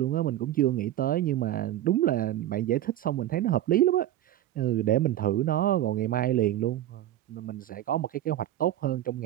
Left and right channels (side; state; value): left; quieter; 13.0 dB